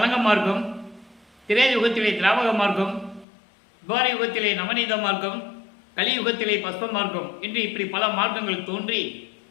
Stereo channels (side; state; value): right; drops out; at 3.2 s